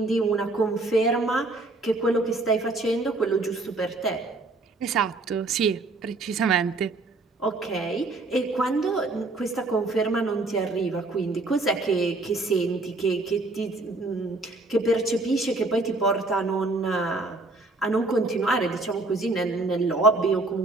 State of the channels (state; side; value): quieter; left; 3.1 dB